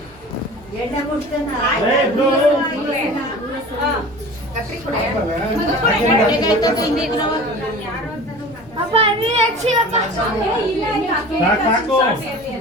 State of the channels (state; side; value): noise; left; rumble, 26 dB below the sound